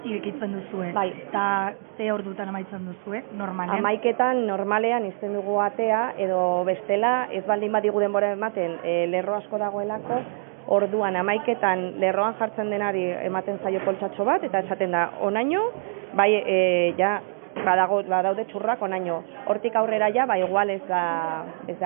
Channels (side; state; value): left; silent; digital silence